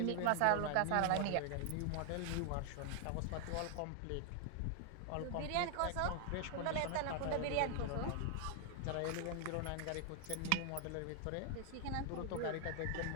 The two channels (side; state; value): both; different; correlation 0.00